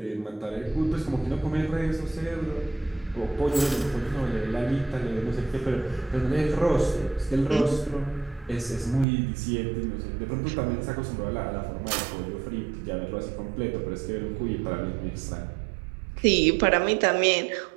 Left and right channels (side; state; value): left; drops out; at 9.1 s